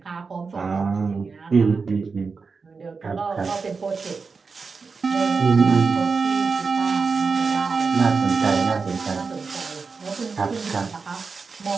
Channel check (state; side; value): quieter; left; 4.8 dB